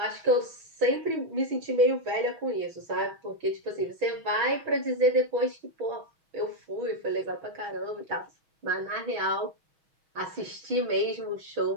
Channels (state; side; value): late; left; 6.2 ms